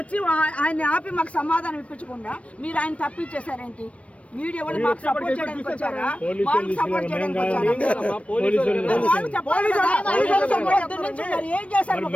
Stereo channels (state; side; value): late; right; 0.063 ms